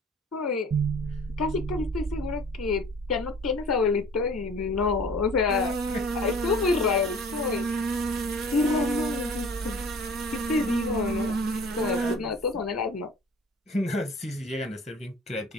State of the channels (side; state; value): both; normal; correlation 0.46